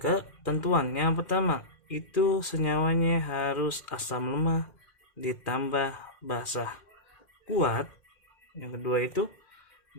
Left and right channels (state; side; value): late; right; 2.1 ms